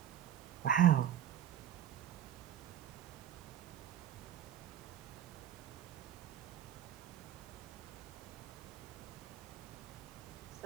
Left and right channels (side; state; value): left; quieter; 10.5 dB